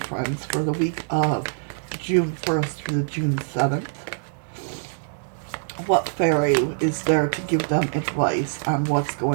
for the week of June 1st through June 7th? What fairy is there to give them advice on what's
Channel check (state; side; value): silent; left; digital silence